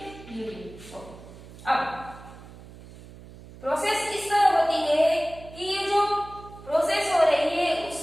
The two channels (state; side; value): noise; right; hum, 18 dB below the sound